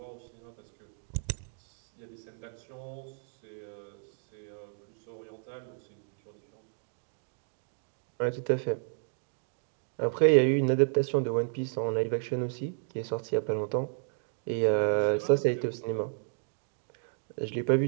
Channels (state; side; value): silent; left; digital silence